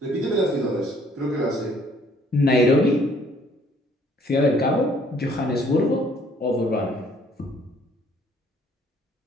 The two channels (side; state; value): both; normal; correlation 0.62